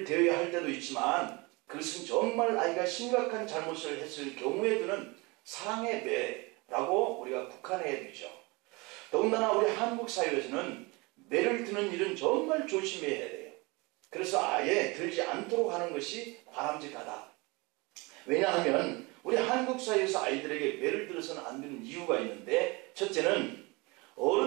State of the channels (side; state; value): left; quieter; 26.0 dB